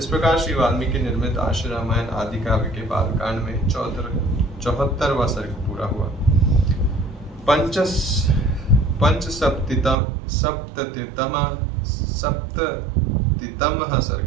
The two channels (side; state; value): left; drops out; at 10.0 s